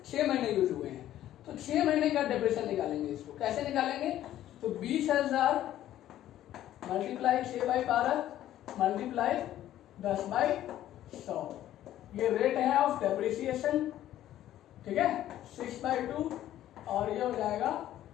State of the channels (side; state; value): right; quieter; 12.7 dB